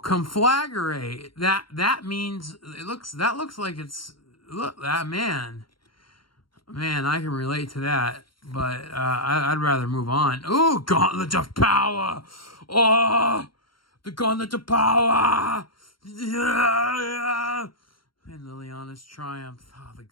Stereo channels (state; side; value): late; right; 0.73 ms